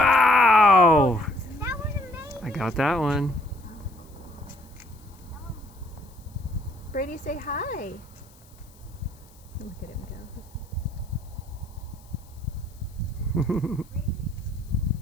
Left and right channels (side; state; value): left; noise; hiss, 27 dB below the sound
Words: That was amazing. I got that one. Brady, say hi. Look at him go.